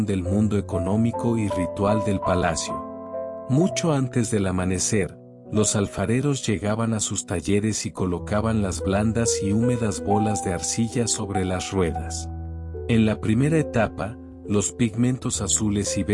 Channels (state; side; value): identical; both; correlation 1.00